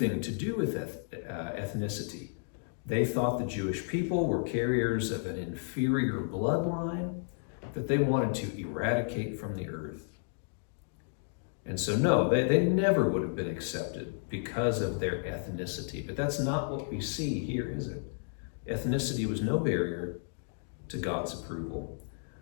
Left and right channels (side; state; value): right; silent; digital silence